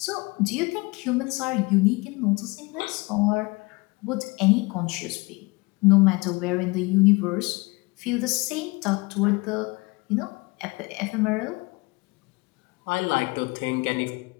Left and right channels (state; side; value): quieter; right; 25.3 dB